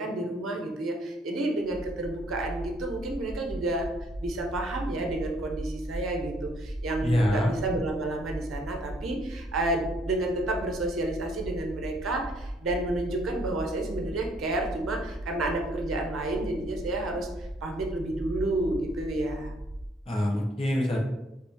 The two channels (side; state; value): both; normal; correlation 0.65